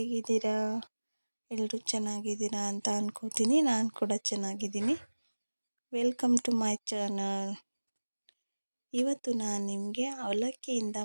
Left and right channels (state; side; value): inverted; both; correlation -1.00